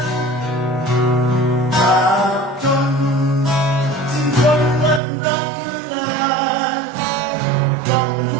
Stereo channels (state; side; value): drops out; left; at 5.0 s